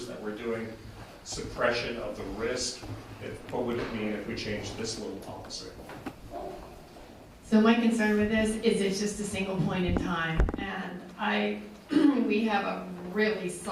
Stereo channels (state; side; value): identical; both; correlation 1.00